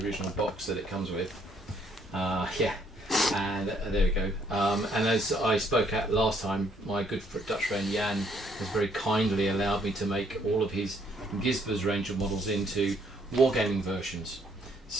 original box that it comes with. And there we go. And as I spoke at last time, my good Dutch friend Jan has very kindly allowed me to make all of his Gisber's range of models into wargaming versions.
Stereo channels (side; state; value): both; normal; correlation 0.67